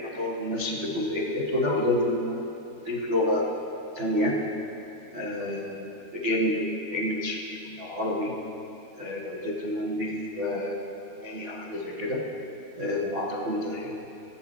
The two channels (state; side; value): late; left; 13 ms